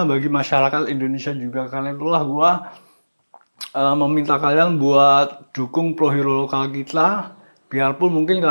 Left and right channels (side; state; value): both; inverted; correlation -1.00